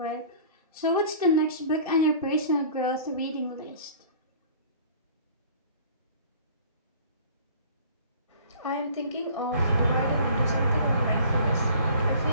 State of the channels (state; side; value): inverted; both; correlation -0.48